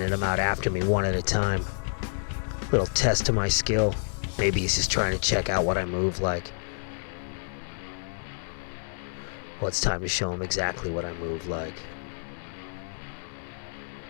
them out after me one at a time. Little test to my skill. Maybe he's just trying to check out what I move like. Well, it's time to show him exactly what I move like.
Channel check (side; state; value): right; silent; digital silence